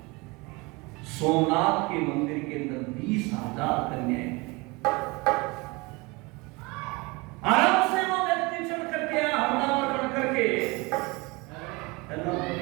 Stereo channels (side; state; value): left; quieter; 25.6 dB